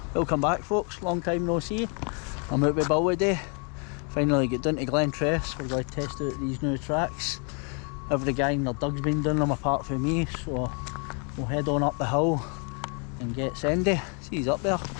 Welcome back folks, long time no see. I'm out with Bill today. Finally get down to Glentress. We're going to test out these new tracks. Every gang their dug's been doing them apart from me, so we'll head on up the hill and get Sandy. See, he's up there.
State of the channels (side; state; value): right; quieter; 38.0 dB